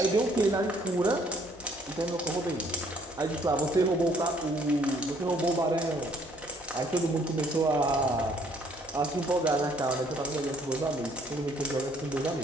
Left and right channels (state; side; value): normal; both; correlation 0.63